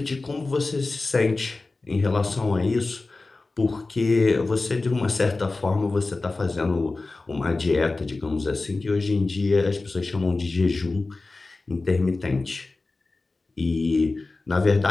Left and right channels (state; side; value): quieter; right; 3.5 dB